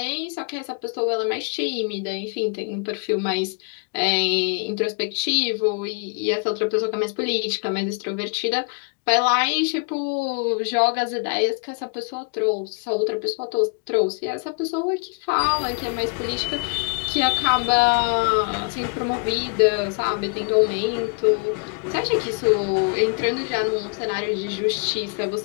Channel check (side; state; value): right; quieter; 36.8 dB